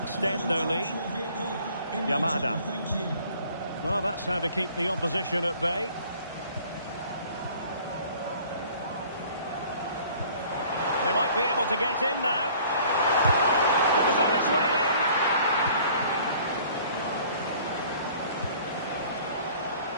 their lead. Yamada. Well, that's how to keep the opposition at bay. They might be able to get in now. It was on its way in.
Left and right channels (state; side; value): inverted; both; correlation -0.53